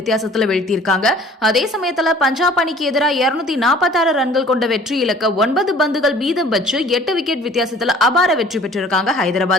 வீழ்த்தியிருக்காங்க. அதே சமயத்துல பஞ்சாப் அணிக்கு எதிராக 246 ரன்கள் கொண்ட வெற்றி இலக்க 9 பந்துகள் மீதம் வச்சு 8 விக்கெட் வித்தியாசத்துல அபார வெற்றி பெற்றிருக்காங்க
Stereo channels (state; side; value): normal; both; correlation 0.51